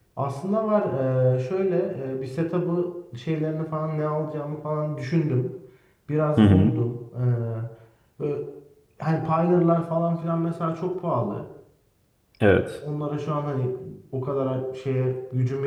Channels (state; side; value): identical; both; correlation 1.00